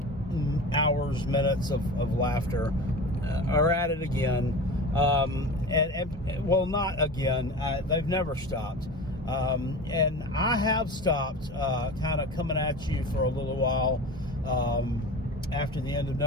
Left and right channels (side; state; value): both; normal; correlation 0.32